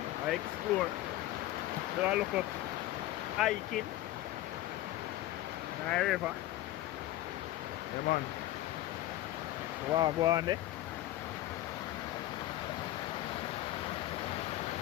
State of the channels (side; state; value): right; quieter; 15.3 dB